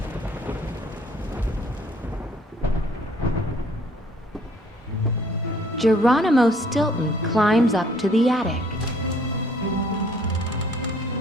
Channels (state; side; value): normal; both; correlation 0.59